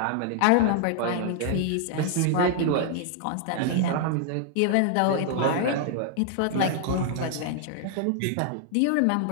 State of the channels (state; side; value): different; both; correlation 0.00